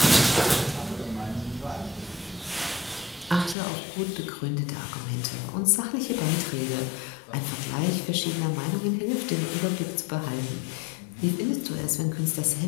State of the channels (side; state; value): right; drops out; at 3.6 s